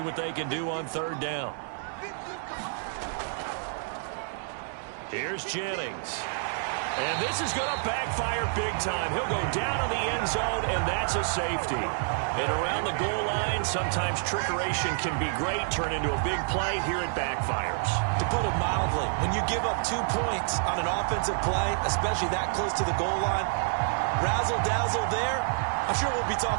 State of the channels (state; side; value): silent; left; digital silence